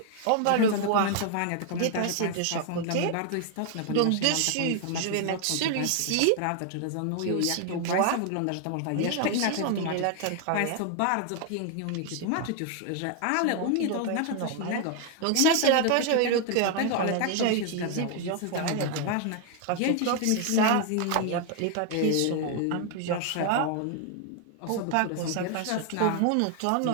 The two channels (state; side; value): different; both; correlation 0.00